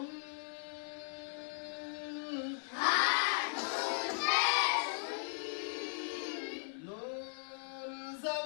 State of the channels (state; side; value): silent; right; 53 dB below the other